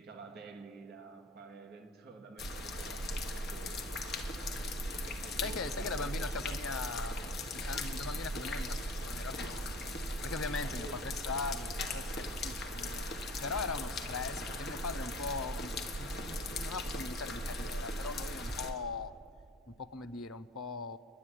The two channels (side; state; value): both; normal; correlation 0.45